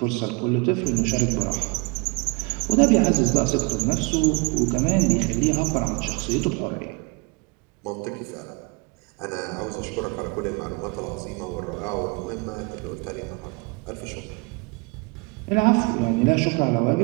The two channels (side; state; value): left; quieter; 29.2 dB